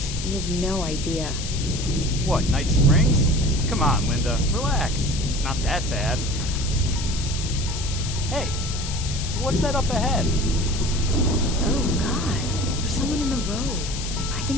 You have no idea. What, Night Springs? Come on, Linda. Relax. It's not that bad. Hey, what's that up ahead? Oh, God. There's someone in the road. I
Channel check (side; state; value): left; noise; hiss, 8 dB below the sound